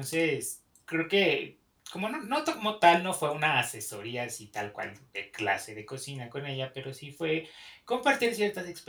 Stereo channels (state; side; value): identical; both; correlation 1.00